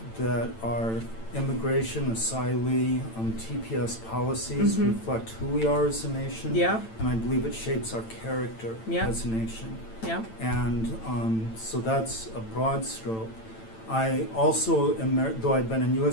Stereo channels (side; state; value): right; late; 9.0 ms